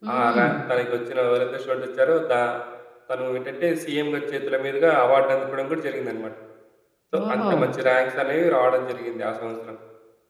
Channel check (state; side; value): identical; both; correlation 1.00